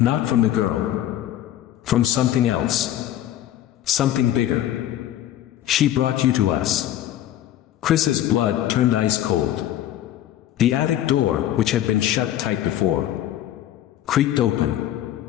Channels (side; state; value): right; quieter; 12.4 dB